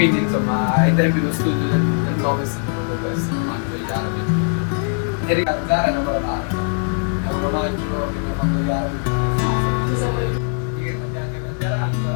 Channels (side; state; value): right; silent; 56 dB below the other